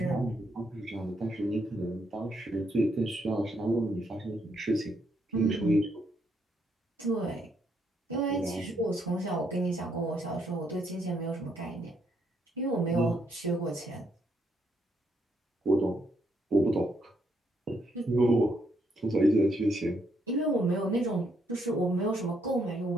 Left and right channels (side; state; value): both; normal; correlation 0.75